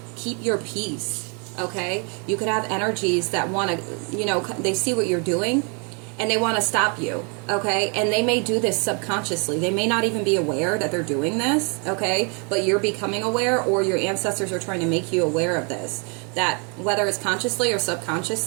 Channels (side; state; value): left; quieter; 35.6 dB